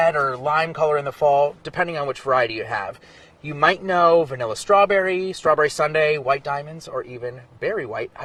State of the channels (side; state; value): both; identical; correlation 1.00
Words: or lime color in the fall, depending on which variety you have. You might know vanilla strawberry, strawberry sundae, white diamonds, or even berry white